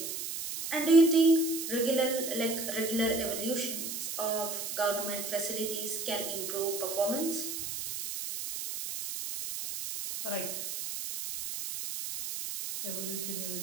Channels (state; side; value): noise; right; hiss, 5 dB below the sound